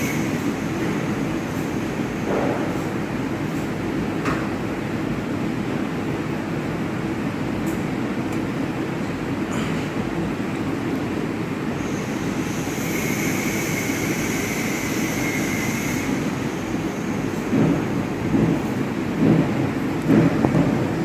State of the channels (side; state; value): both; identical; correlation 1.00